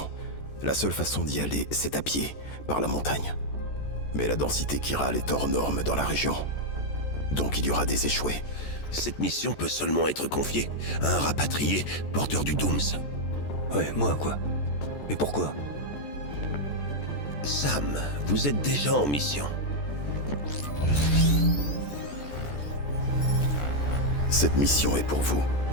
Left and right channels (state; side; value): late; right; 14 ms